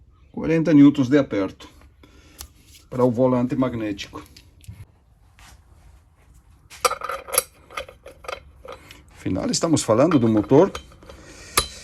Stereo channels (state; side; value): identical; both; correlation 1.00